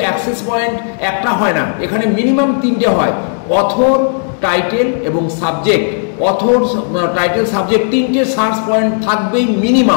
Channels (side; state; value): right; silent; 71 dB below the other